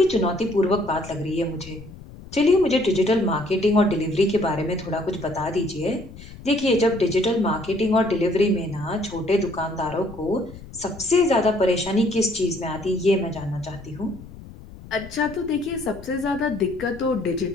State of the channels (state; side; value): noise; left; rumble, 17 dB below the sound